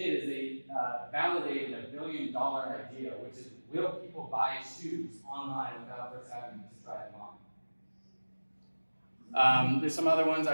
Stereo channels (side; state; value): both; inverted; correlation -1.00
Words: is they validated a $1 billion idea, which is, will people buy shoes online without first having to try them on? There's some other ones, I